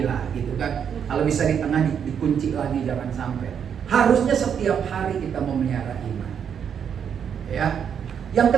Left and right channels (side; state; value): left; quieter; 7.9 dB